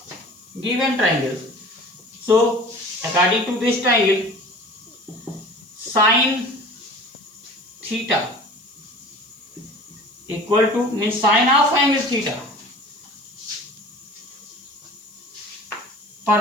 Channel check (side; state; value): left; noise; hiss, 27 dB below the sound